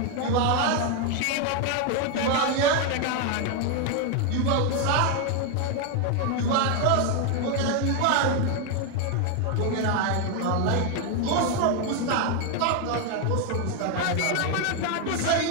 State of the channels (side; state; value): both; different; correlation 0.01